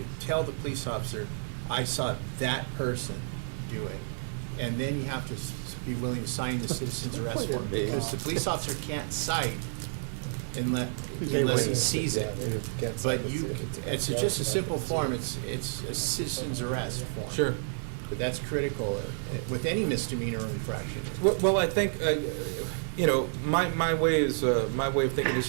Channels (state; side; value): silent; left; digital silence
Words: tell the police officer, I saw that person do it. And then you have to be willing to sign the citizen's arrest form, because the police officer can't cite unless he sees it. But it's just a simple form, it's a citizen's arrest form. Sure. But that's critical with any misdemeanor or infraction. Well, I think, my way of thinking is